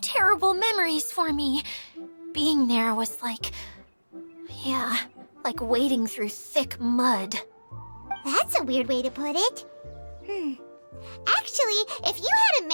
terrible memories for me. Being there was like wading through thick mud. That's a weird way to put it. Actually, if you hadn't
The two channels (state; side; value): inverted; both; correlation -1.00